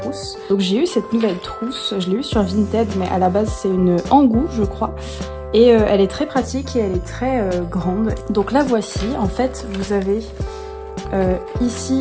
Donc j'ai eu cette nouvelle trousse, je l'ai eu sur Vinted mais à la base c'est une Angoo je crois. Et elle est très pratique et elle est très grande. Donc la voici, en fait vous avez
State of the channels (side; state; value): both; identical; correlation 1.00